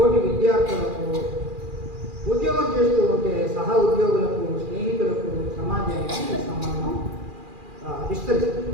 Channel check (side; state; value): left; late; 2.4 ms